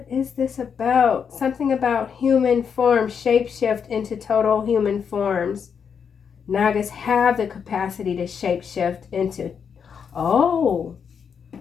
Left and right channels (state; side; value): quieter; right; 6.9 dB